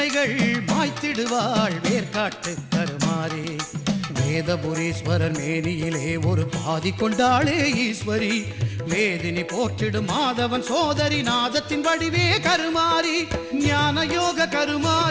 மாய்த்திடுவாள் வேர்க்காட்டு கருமாறி. வேதபுரீஸ்வரர் மேனியிலே ஒரு பாதி கொண்டாளே ஈஸ்வரி, வேதினி போற்றிடும் மாதவன் சோதரி நாதத்தின் வடிவே கருமாரி, ஞான யோக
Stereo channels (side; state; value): both; identical; correlation 1.00